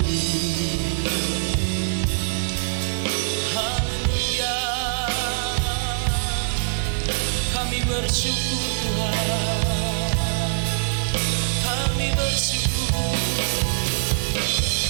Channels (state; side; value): silent; left; digital silence